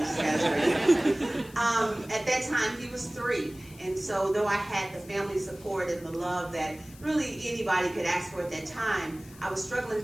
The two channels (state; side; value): noise; left; hiss, 22 dB below the sound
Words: got his braces. At that time, he was 3. And so though I had the family support and the love that really anybody could ask for at that time, I was struggling